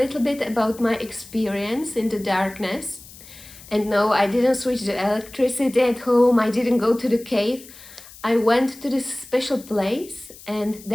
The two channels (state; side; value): noise; left; hiss, 19 dB below the sound